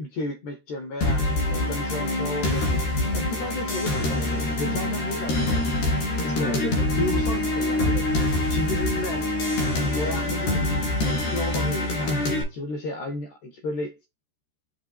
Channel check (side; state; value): right; late; 13 ms